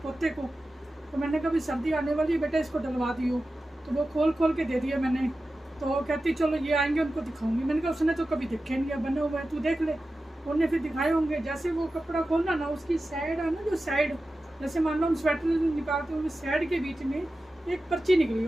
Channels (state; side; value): normal; both; correlation 0.93